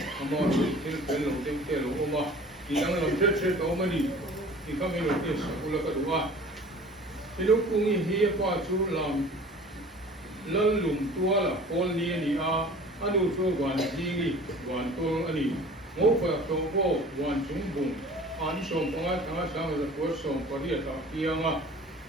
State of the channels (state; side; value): normal; both; correlation 0.45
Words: chú thiên lộc thiên lộc mà thì đang làm chết đó mà đi thì các mình lo kia sắp là cái đó thì lúc cùng hi qua chú làm lần lùng tua là con đi anh u cho quan gì quan tôi anh ngô phải tôi có quan chúng bùng anh sống bằng ai thằng sáng là có sống có đi ta kia mà